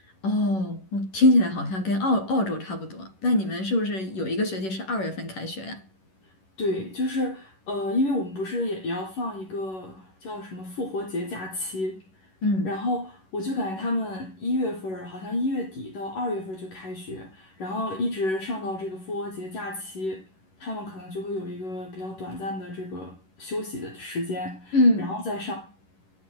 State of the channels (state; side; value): late; right; 11 ms